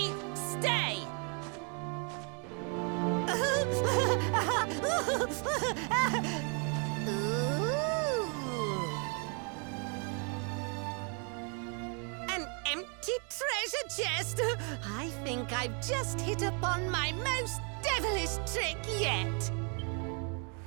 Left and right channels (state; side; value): quieter; left; 37.8 dB